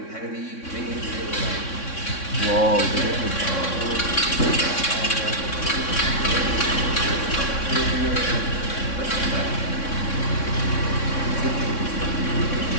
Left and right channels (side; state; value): right; late; 3.6 ms